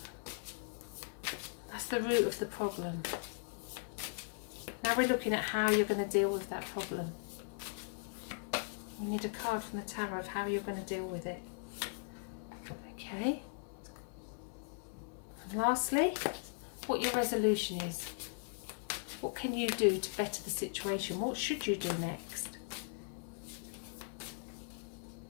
that's the root of the problem. Now we're looking at how you're going to deal with that problem. We need a card from the tarot of how you're going to deal with it. Okay. And lastly, what your resolution is. What can you do to better the situation? What should you do next?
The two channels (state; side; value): silent; right; 52 dB below the other